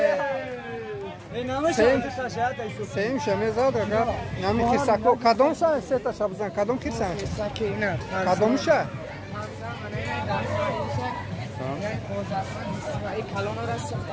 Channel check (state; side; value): identical; both; correlation 1.00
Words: سیم شمیزاد اگر نمی خیرساکو کدوم شد سه تا شبزن کدوم خیرسان؟ کدوم شد؟ این کلان را سخت